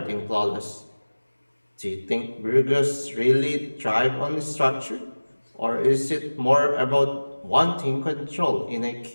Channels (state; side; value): inverted; both; correlation -1.00